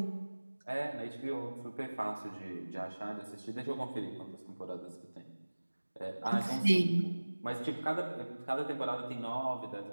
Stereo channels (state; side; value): inverted; both; correlation -1.00